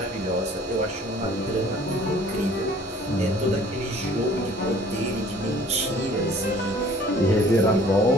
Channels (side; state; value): both; normal; correlation 0.53